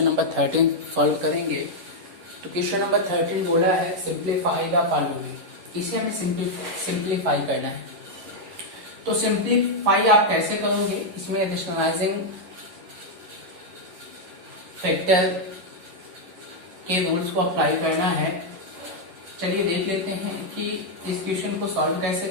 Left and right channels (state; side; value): late; left; 11 ms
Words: नंबर 13 सॉल्व करेंगे। तो क्वेश्चन नंबर 13 बोला है सिंप्लीफाई द फॉलोइंग। इसे हमें सिंप्लीफाई करना है। तो सिंप्लीफाई आप कैसे करोगे? इसमें रेशनलाइजिंग फैक्टर के रूल्स को अप्लाई करना है। चलिए देख लेते हैं कि इस क्वेश्चन को सॉल्व कैसे